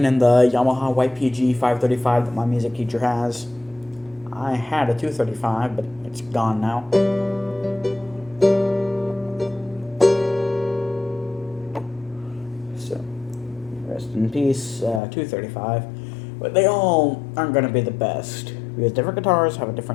and the Yamaha YPG 535 that my music teacher has. I had a 235, but it's gone now. So, rest in peace, 235. But they all aren't going to be the best, because different guitars have a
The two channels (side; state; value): right; drops out; at 15.0 s